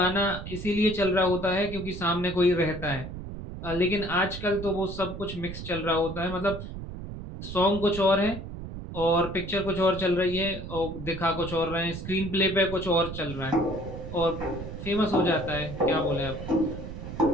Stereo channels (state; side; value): noise; right; rumble, 9 dB below the sound